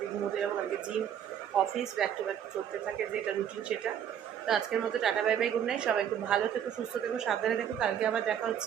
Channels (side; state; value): left; quieter; 9.3 dB